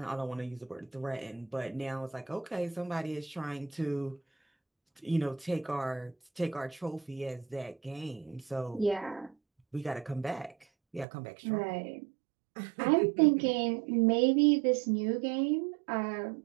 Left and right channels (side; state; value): left; drops out; at 11.1 s